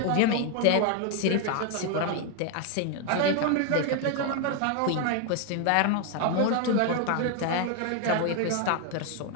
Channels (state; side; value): different; both; correlation 0.01